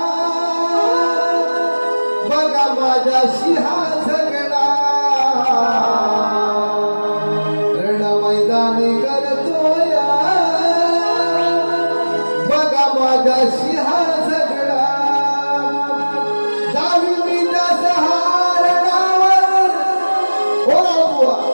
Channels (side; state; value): both; inverted; correlation -1.00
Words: बघा माझ्याशी हा झगडा रण मैदानी करतोया बघा माझ्याशी हा झगडा जावी मी त्या सहारणावर हो बुवा